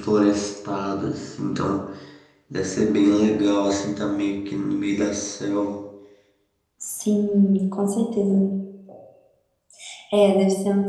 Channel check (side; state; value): both; identical; correlation 1.00